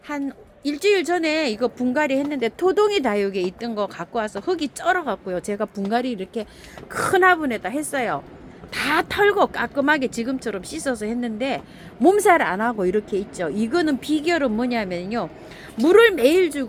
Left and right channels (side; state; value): both; identical; correlation 1.00